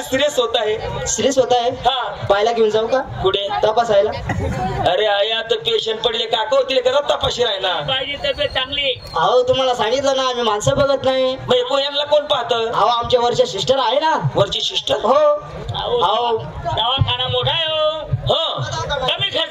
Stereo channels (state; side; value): identical; both; correlation 1.00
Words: सिरियस होत आहे सिरियस होत आहे पाहायला घेऊन जाऊ का कुठे तपासायला अरे आया तर पेशंट पडले काका होतील का तपाशी राहिला पाहिजे तब्येत चांगली अहो तुम्हाला सांगितलं ना आम्ही माणसं बघत नाही मग यांना कोण पाहतं अहो आमच्या वरच्या सिस्टर आहे ना वरची सिस्टर हो अहो दवाखाना मोठा आहे हो कमी